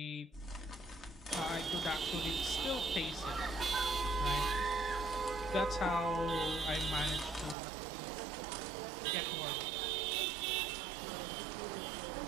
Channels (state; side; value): drops out; left; at 7.6 s